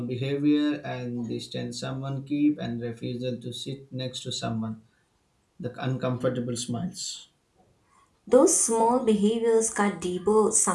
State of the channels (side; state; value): both; identical; correlation 1.00